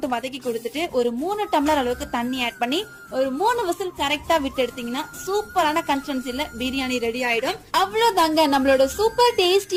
வதக்கி கொடுத்துட்டு ஒரு 3 டம்ளர் அளவுக்கு தண்ணி ஆட் பண்ணி ஒரு 3 விசில் கரெக்டா விட்டு எடுத்தீங்கன்னா சூப்பரான கன்சிஸ்டன்சில பிரியாணி ரெடி ஆயிடும். அவ்வளவுதாங்க, நம்மளோட சூப்பர்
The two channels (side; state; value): both; identical; correlation 1.00